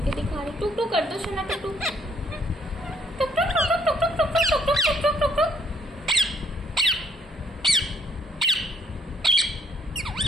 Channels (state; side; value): normal; both; correlation 0.68